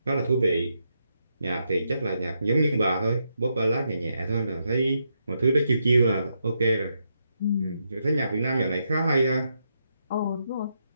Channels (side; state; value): both; inverted; correlation -0.81